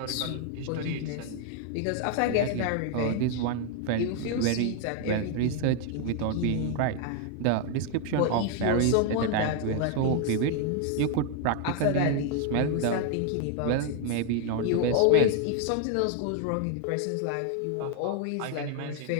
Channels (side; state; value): both; different; correlation 0.00